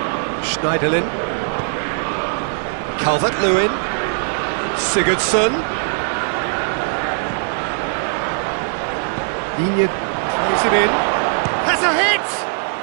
Schneiderlin. Calvert-Lewin. Sigurdsson. Digne plays it in. Has a hit!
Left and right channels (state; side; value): silent; left; 62 dB below the other